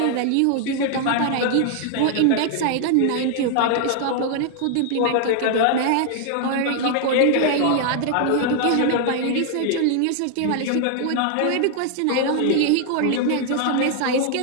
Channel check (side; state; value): both; different; correlation 0.00